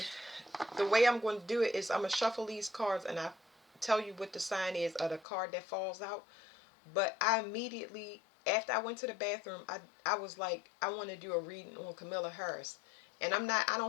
the way I'm going to do it is I'm going to shuffle these cards and I tell you what the sign is of the card that falls out. But I immediately, after I went to the bathroom, I was like, I want to do a reading on Camilla Harris. And I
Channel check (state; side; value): drops out; right; at 5.2 s